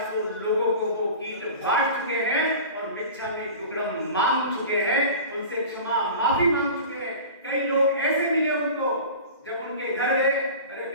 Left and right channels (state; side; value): inverted; both; correlation -0.37